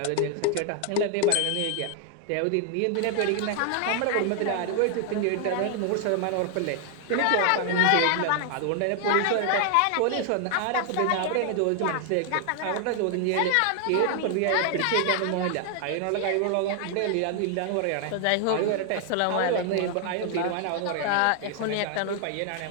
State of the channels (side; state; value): both; different; correlation 0.00